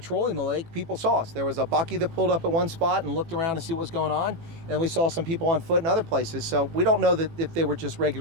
the lake, people saw us. There was a bucky that pulled up at one spot and looked around to see what was going on. And we saw some people on foot in other places. So we don't know that if they were just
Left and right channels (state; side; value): late; left; 18 ms